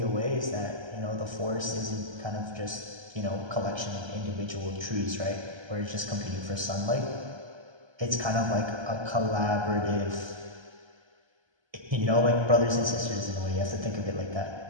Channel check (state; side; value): late; left; 1.3 ms